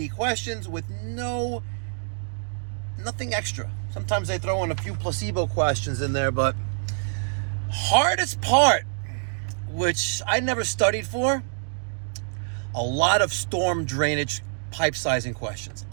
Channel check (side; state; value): left; silent; digital silence